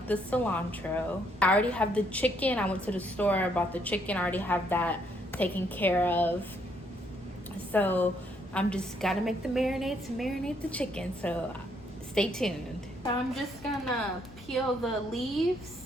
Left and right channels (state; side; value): normal; both; correlation 0.71